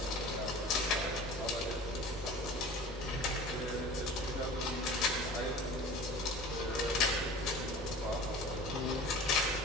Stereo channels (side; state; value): both; normal; correlation 0.40